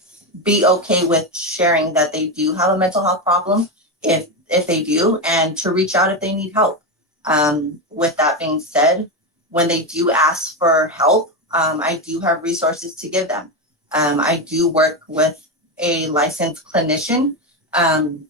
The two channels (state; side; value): normal; both; correlation 0.13